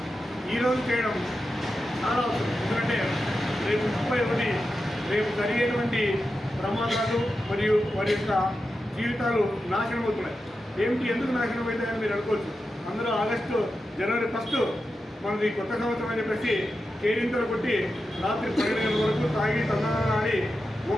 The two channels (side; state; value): both; normal; correlation 0.90